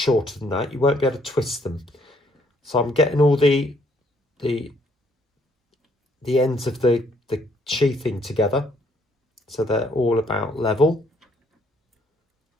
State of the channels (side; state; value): both; normal; correlation 0.67